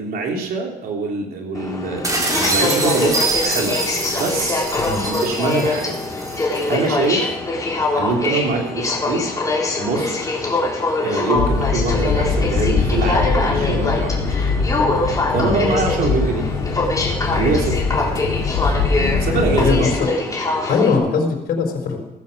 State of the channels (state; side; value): normal; both; correlation 0.47